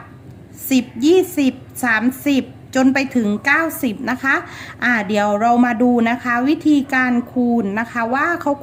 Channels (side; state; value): both; identical; correlation 1.00